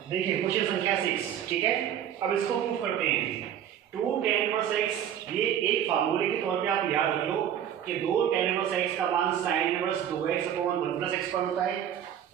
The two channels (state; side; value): quieter; left; 9.9 dB